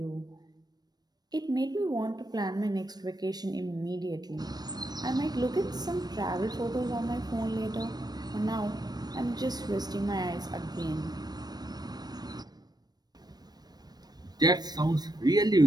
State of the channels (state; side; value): late; left; 0.19 ms